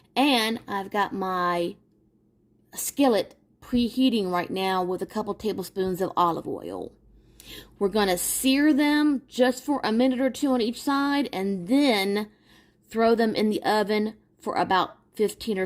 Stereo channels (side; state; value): both; identical; correlation 1.00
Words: And I've got my skillet preheating right now with a couple tablespoons of olive oil. We're going to sear them just for a minute or two on each side and then throw them in the oven for about 15 or